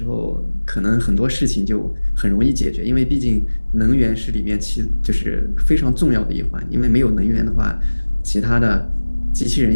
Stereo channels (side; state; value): both; inverted; correlation -1.00